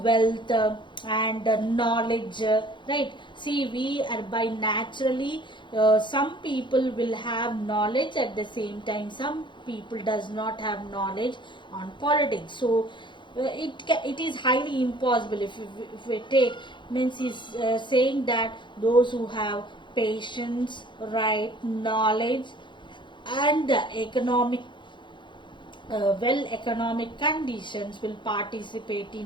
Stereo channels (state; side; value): late; right; 0.23 ms